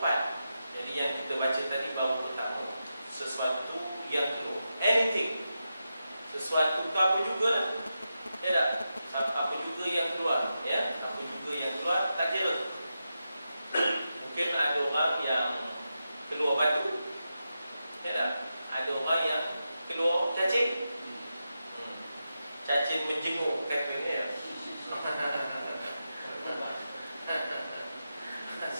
Jadi yang kita baca tadi bahawa pertama, sesuatu yang keluar, anything, sesuatu itu apa juga, ya tak? Apa juga yang keluar, ya? Apa juga yang keluar, tak kira. Mungkin ada orang yang keluar batu, ya tak? Ada orang yang keluar cacing. Cacing menjemur katanya ya.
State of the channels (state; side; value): inverted; both; correlation -0.89